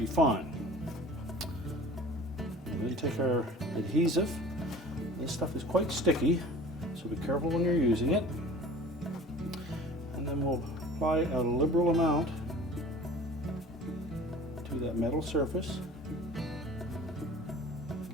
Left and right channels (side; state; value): both; normal; correlation 0.43